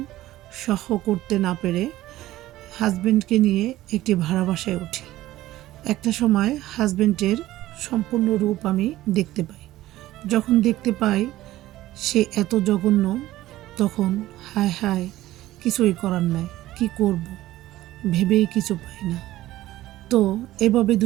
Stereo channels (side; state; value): left; quieter; 15.6 dB